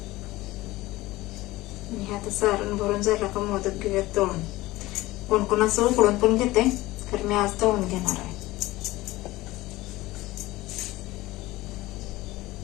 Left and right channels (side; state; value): right; quieter; 18.5 dB